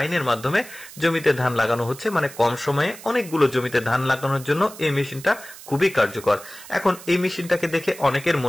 মাধ্যমে জমিতে ধান লাগানো হচ্ছে। মানে কম সময়ে অনেকগুলো জমিতে ধান লাগানোর জন্য এই মেশিনটা খুবই কার্যকর। এখন এই মেশিনটাকে দেখে অনেকের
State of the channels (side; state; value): right; noise; hiss, 17 dB below the sound